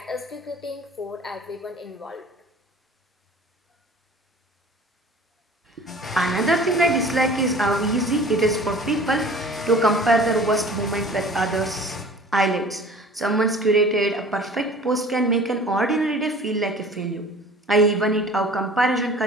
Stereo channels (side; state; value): both; normal; correlation 0.45